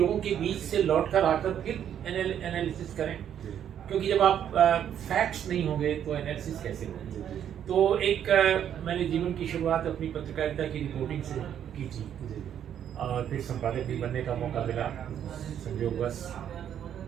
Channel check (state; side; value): quieter; left; 9.6 dB